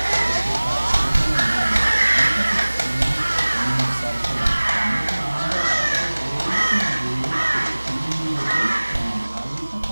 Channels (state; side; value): inverted; both; correlation -1.00